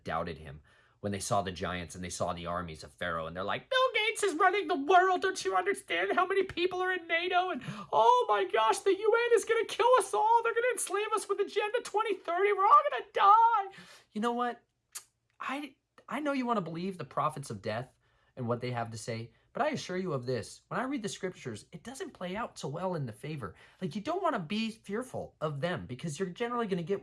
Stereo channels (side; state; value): both; identical; correlation 1.00